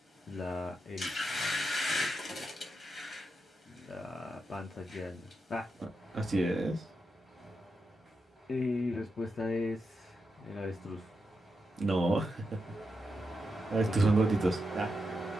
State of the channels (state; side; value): normal; both; correlation 0.86